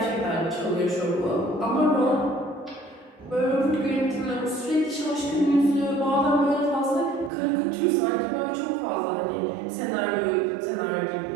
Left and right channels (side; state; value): left; drops out; at 7.3 s